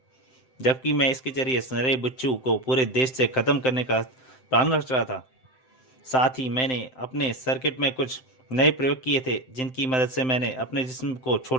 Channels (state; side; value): late; right; 7.8 ms